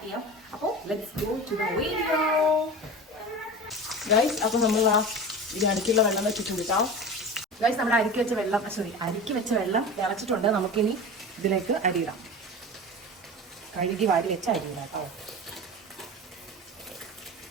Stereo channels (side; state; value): both; normal; correlation 0.31